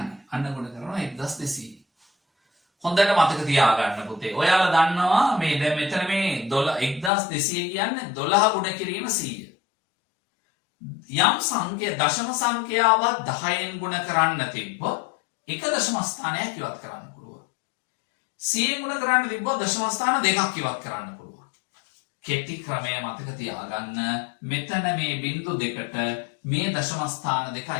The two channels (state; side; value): drops out; right; at 7.1 s